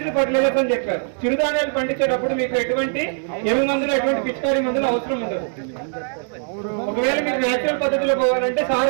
ఫర్టిలైజర్స్ అని చెప్పారు. చిరుధాన్యాలు పండించేటప్పుడు మీకు ఎటువంటి ఎరువు మందులు, ఎటువంటి పిచికారీ మందులు అవసరం ఉండదు. ఒకవేళ మీరు నేచురల్ పద్ధతిలో పోవాలంటే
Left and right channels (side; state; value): left; silent; 63 dB below the other